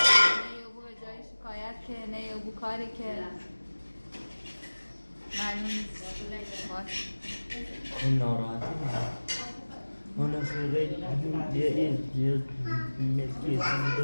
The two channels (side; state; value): both; inverted; correlation -1.00